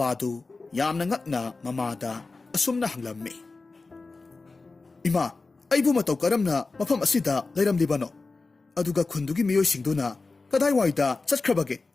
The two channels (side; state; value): right; quieter; 3.8 dB